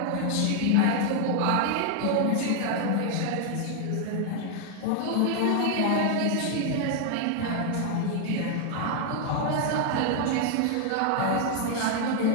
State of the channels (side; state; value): both; different; correlation 0.00